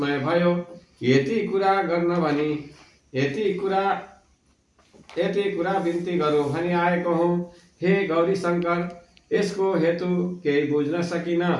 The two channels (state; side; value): identical; both; correlation 1.00